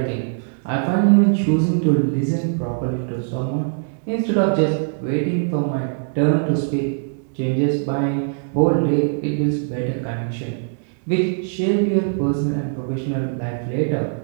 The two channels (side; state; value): left; silent; digital silence